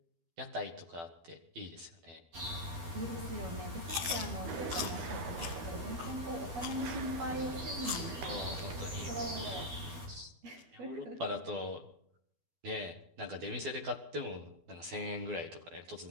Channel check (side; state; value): left; late; 12 ms